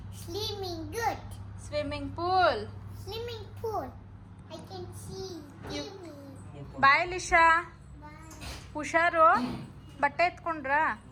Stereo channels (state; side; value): identical; both; correlation 1.00